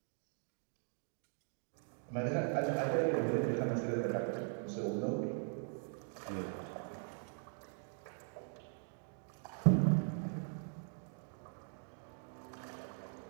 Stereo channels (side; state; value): left; silent; 51 dB below the other